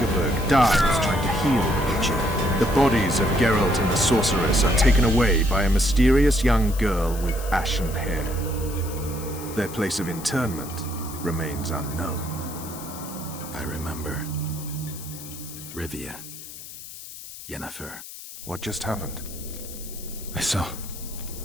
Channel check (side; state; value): left; noise; hiss, 13 dB below the sound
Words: dies trying to heal the witcher. The bodies of Geralt and the sorceress are taken away by a mysterious young girl with ashen hair. Their place of interment remains unknown. I remember. Rivia. Yennefer. What just happened? I